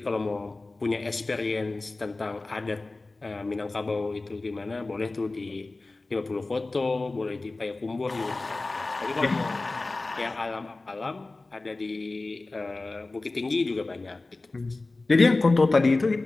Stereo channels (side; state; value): right; quieter; 3.3 dB